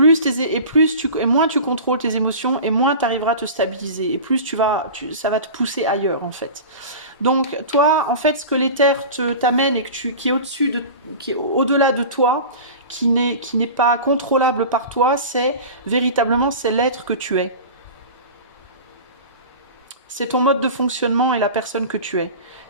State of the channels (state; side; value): inverted; both; correlation -0.34